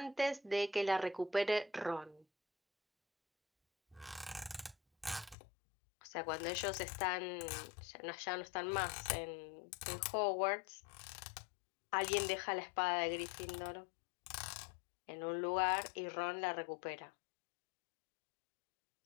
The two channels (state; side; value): drops out; right; at 5.4 s